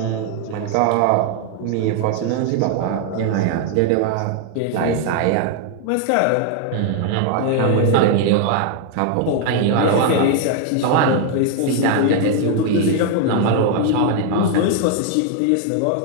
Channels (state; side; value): different; both; correlation 0.00